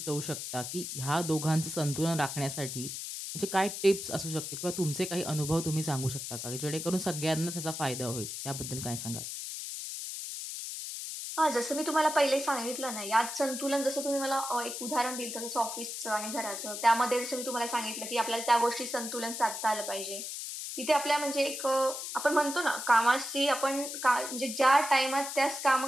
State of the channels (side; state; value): left; noise; hiss, 6 dB below the sound